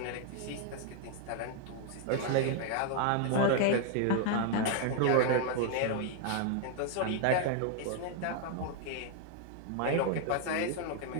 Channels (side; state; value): both; different; correlation 0.00